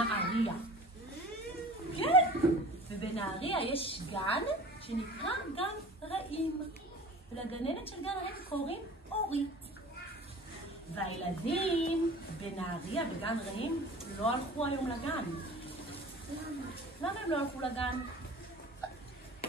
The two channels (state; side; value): normal; both; correlation 0.41